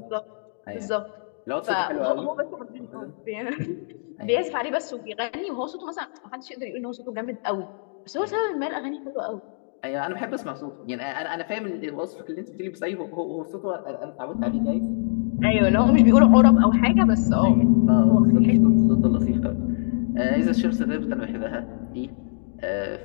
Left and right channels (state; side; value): silent; right; digital silence